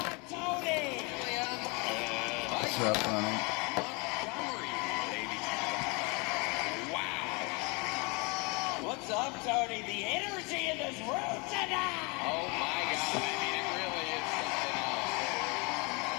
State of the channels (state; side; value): quieter; right; 29.6 dB